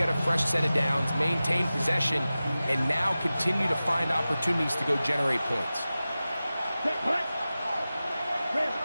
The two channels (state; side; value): inverted; both; correlation -0.95